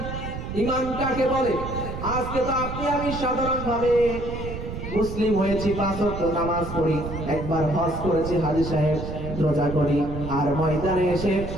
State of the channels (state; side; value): noise; right; rumble, 7 dB below the sound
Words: ঈমান কাকে বলে। আজকে তো আপনি আমি সাধারণভাবে মুসলিম হয়েছি, 5 ওয়াক্ত নামাজ পড়ি, একবার হজ করেছি হাজী সাহেব, রোজা করি, আর ময়দানে এসে